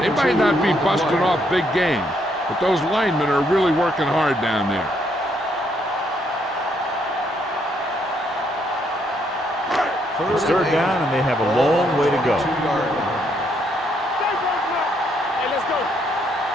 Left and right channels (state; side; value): normal; both; correlation 0.73